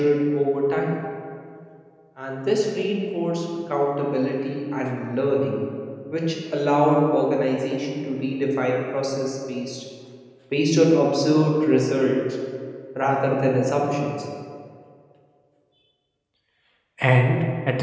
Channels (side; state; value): both; identical; correlation 1.00